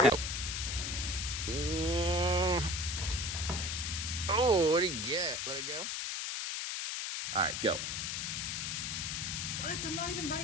Oh, what do you get? Let it go. All right, go. What? I'm not even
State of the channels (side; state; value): left; noise; hiss, 2 dB below the sound